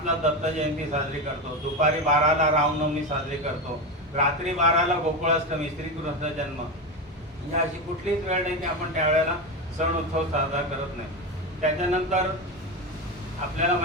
दत्त जयंती साजरी करतो, दुपारी 12ला रामनवमी साजरी करतो, रात्री 12ला गोकुळाष्टमी, श्रीकृष्ण जन्म. ही अशी कुठलीच वेळ नाही की आपण त्यावेळेला सण उत्सव साजरा करत नाही. त्याच्यानंतर आपल्याला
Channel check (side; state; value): both; normal; correlation 0.17